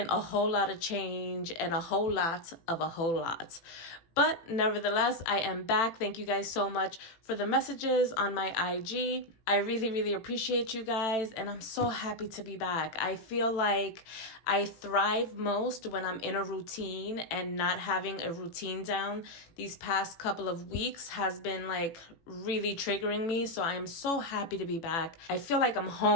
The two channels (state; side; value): late; right; 18 ms